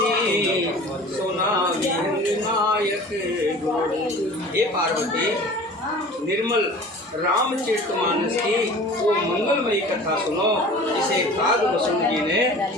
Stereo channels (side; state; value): both; normal; correlation 0.42